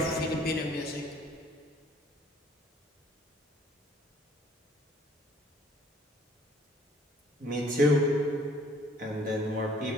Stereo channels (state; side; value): normal; both; correlation 0.58